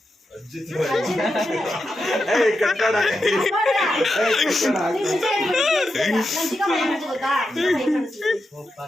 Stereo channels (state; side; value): normal; both; correlation 0.88